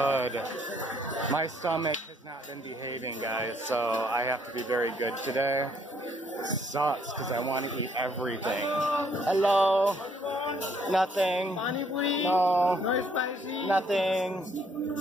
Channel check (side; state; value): both; normal; correlation 0.67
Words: My stomach has not been behaving, guys, so I have to be very good today. Sucks, because I want to eat everything. Hello? Nothing. No. No spicy. Nothing.